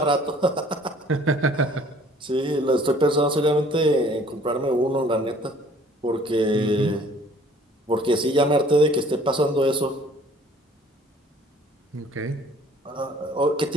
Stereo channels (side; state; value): both; normal; correlation 0.55